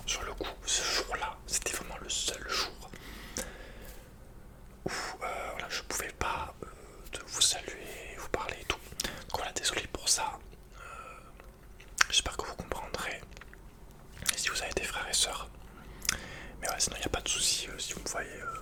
sur le coup, ce jour-là, c'était vraiment le seul jour où voilà, je pouvais pas de vous saluer, vous parler et tout. Donc voilà, désolé pour ça. J'espère que vous comprendrez. Et si vous avez des frères et sœurs. Mais ouais, sinon il n'y a pas de souci si vous me voyez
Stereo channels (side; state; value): both; identical; correlation 1.00